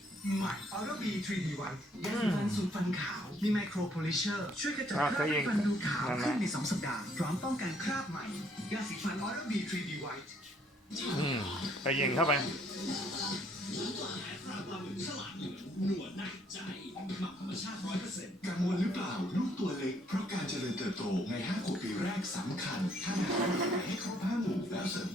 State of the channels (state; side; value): normal; both; correlation 0.66